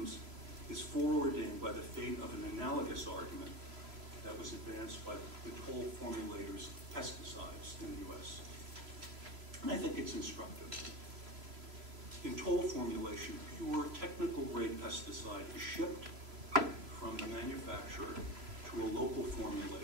is foreordained by the fate of an analogous argument that was advanced by the toll formulators of pesticides in the U.S. And I think it's instructive. In toll formulation, pure technical grade pesticide is shipped from the manufacturer to a local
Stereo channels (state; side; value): late; left; 3.0 ms